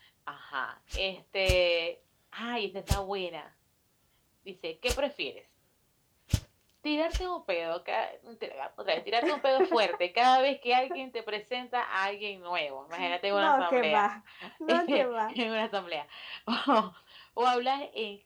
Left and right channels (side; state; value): both; identical; correlation 1.00